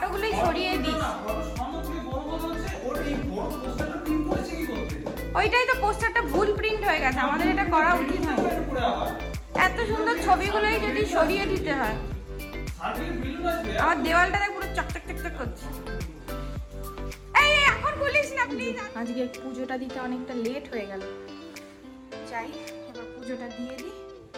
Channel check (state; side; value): identical; both; correlation 1.00